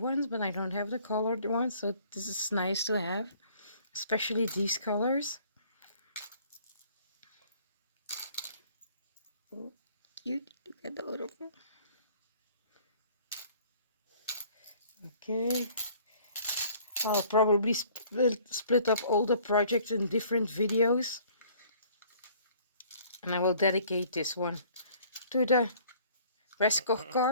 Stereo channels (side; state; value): both; inverted; correlation -0.56